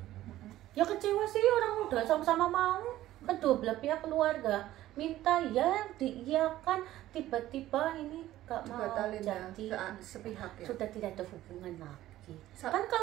Ya kecewa sih, orang udah sama-sama mau. Kedua belah pihak keluarga minta ya diiyakan, tiba-tiba ini gak mau Batalin ya, jadi sepihak ya. sudah tidak ada hubungan lagi. Sa- Kan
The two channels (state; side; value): quieter; left; 14.5 dB